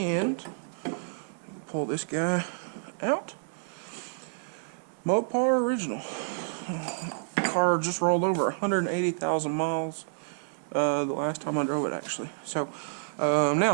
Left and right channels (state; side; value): silent; left; digital silence